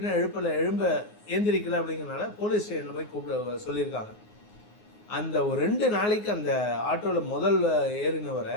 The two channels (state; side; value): late; right; 9.5 ms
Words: எழுந்திரிக்கல அப்படிங்கிறனால போலீஸ் ஸ்டேஷனில் போய் கூப்பிட சொல்லியிருக்காங்க. அந்த ஒரு 2 நாளைக்கு அந்த ஆட்டோவில் முதல் ஏறினவரை